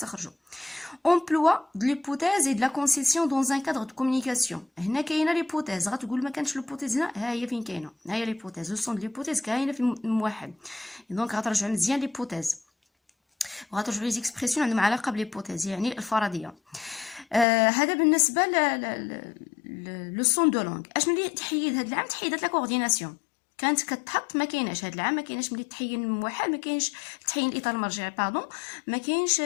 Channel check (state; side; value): drops out; right; at 17.4 s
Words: emploi de l'hypothèse et de la concession dans un cadre de communication. هنا كاينه ليبوتيز غتقول ما كانش ليبوتيز هنا ها هي فين كاينه ها هي ليبوتيز لو سون دو ليبوتيز كاينه في الموحد. دونك غترجعوا مزيان ليبوتيز وغترجعوا لي زيكسبرسيون عندهم علاقه بليبوتيز يعني الفرضيه. هذا بالنسبه لو سون دو لونغ. اشنو اللي تحيد هذا العام تحيدات لا كورديناسيون كانت كتحط ما كايناش هاد العام، ما كايناش ملي تحين الموحد، ما كاينش تحين الاطار المرجعي باردون، ما